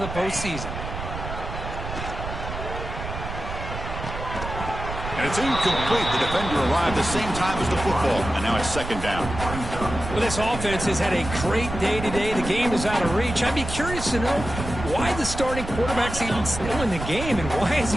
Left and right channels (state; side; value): noise; right; rumble, 7 dB below the sound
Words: of the postseason. And it's incomplete. The defender arrived the same time as the football, and now it's second down. Well, this offense has had a great day today. The game is out of reach. I'd be curious to know why the starting quarterback's even still in the game, and why is